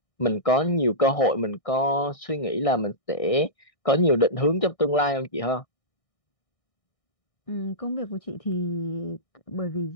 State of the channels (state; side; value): late; right; 1.6 ms